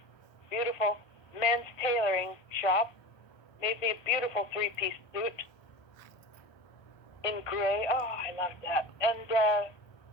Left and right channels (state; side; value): late; right; 1.3 ms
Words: beautiful men's tailoring shop. Made me a beautiful 3-piece suit in gray. Oh, I loved that. And